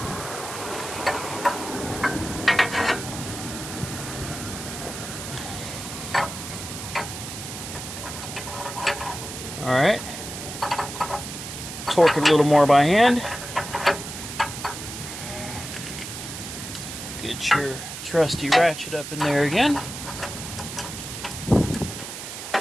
Alright, torque it a little more by hand. Get your trusty ratchet up in there again.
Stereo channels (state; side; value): noise; right; hiss, 9 dB below the sound